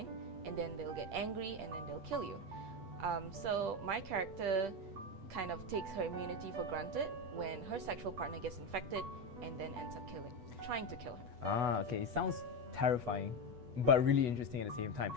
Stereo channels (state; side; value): late; left; 8.2 ms